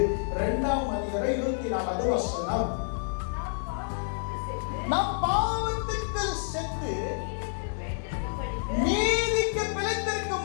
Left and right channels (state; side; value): silent; right; digital silence